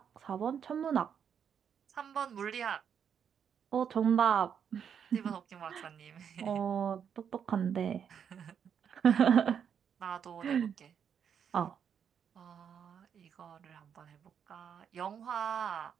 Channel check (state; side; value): quieter; left; 7.8 dB